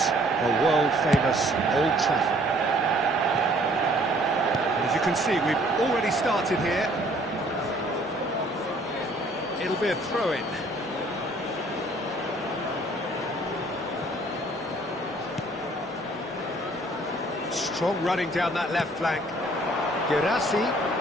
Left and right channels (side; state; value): both; normal; correlation 0.59